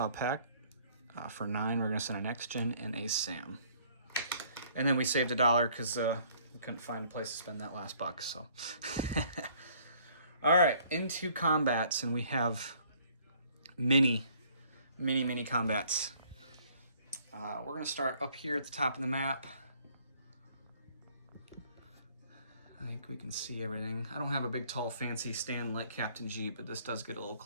Pact. For 9, we're going to send a next-gen and a SAM. And then we saved $1 because we couldn't find a place to spend that last buck. So, all right, into combats, and we have many combats. We're going to start up here at the top of the map. I think we can see everything. I don't have a big, tall, fancy stand like Captain G, but this does get a little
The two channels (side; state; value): both; inverted; correlation -0.60